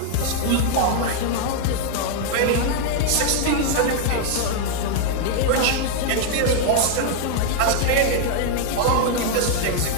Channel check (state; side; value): different; both; correlation 0.00